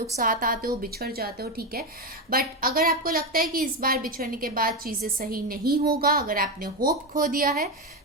साथ आते हो, बिछड़ जाते हो, ठीक है। बट अगर आपको लगता है कि इस बार बिछड़ने के बाद चीज़ें सही नहीं होगा, अगर आपने होप खो दिया है,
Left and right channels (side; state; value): both; normal; correlation 0.12